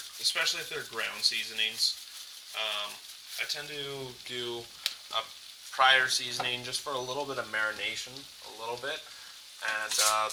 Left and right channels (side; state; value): both; identical; correlation 1.00